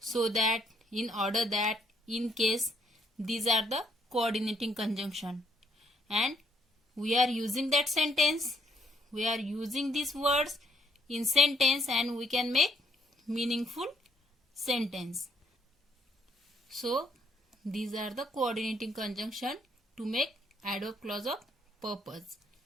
that, in order that, in case. These are the coordinating conjunction, and we are using that sentence, we are using these words in sentence, and we can make meaningful sentence. So these are the coordinating conjunction to make adverb clause of purpose.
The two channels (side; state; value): both; normal; correlation 0.70